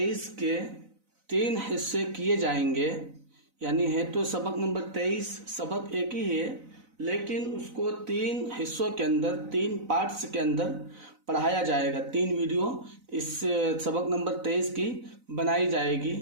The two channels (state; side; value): late; left; 4.0 ms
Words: के 3 हिस्से किए जाएंगे, यानी है तो सबक नंबर 23 सबक एक ही है, लेकिन उसको 3 हिस्सों के अंदर 3 पार्ट्स के अंदर पढ़ाया जाएगा। 3 वीडियो इस सबक नंबर 23 की बनाई